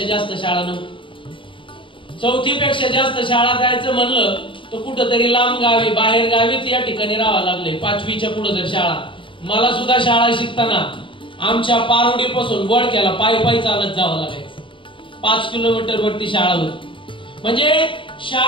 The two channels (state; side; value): late; right; 0.25 ms